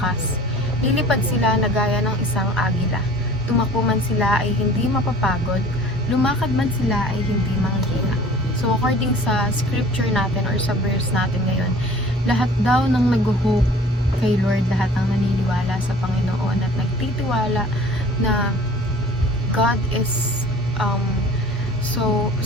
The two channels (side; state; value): both; normal; correlation 0.47